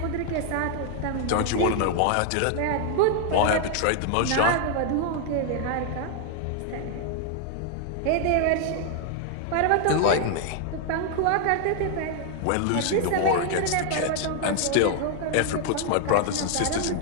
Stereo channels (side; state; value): both; different; correlation 0.00